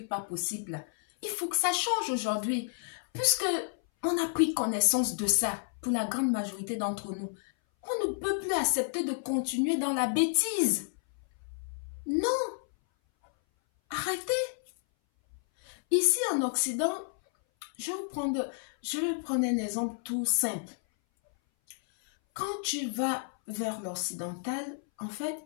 pas possibles. Il faut que ça change aujourd'hui, puisque on a pris connaissance de ça pour la grande majorité d'entre nous. On ne peut plus accepter de continuer dans la bêtise. Non. Arrêtez. Ici en Occident, je vais prendre un exemple tout simple. Quand tu vas vers l'occidental, en fait,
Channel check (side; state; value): right; silent; 57 dB below the other